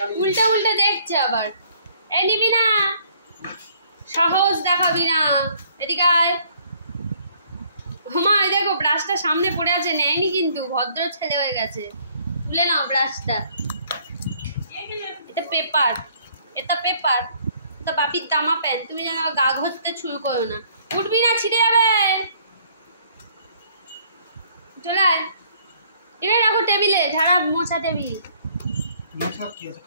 উল্টা দেখছে আবার। এই নিবি না, সাহস দেখাবি না, এদিকে আয়। মা দেখো ব্রাশটা সামনে পড়ে আছে, নেয়নি কিন্তু, ভদ্র ছেলে হয়ে গেছে। তুলে নাও ব্রাশটা। এটা পেপার, এটা বাপির দামা প্যান। তুমি যেন গা ঘষতে শুরু করো না, উঠবি না, ছিঁড়ে যাবে। চলে আয়, এখানে রাখো টেবিলে, ঝাড়া মোছা টেবিল।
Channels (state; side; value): inverted; both; correlation -0.62